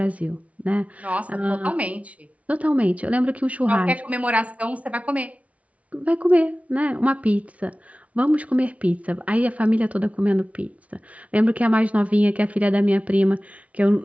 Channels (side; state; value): left; late; 0.066 ms